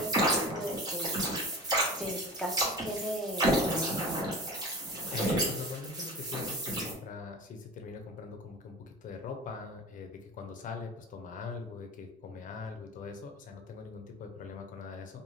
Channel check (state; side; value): normal; both; correlation 0.35